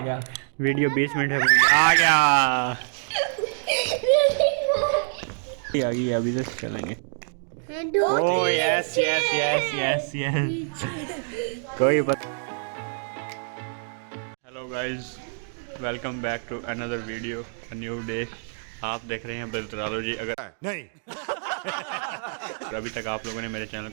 गया। वीडियो 20 मिनट है आ गया आ गई अभी तक चलेंगे। Oh yes yes yes yes yes कोई बात। Hello guys, welcome back to another video, a new day. आप देख रहे हैं ब्रदरोलॉजी। अगर नहीं अभी तक आप लोगों ने मेरे चैनल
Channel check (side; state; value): left; silent; digital silence